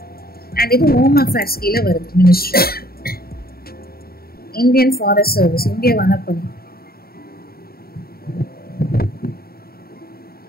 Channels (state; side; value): late; right; 0.44 ms